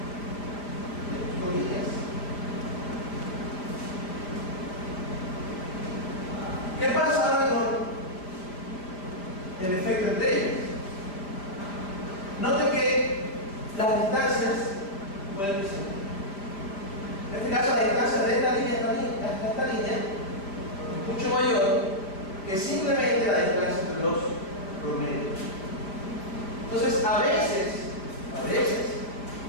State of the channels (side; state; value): right; late; 5.1 ms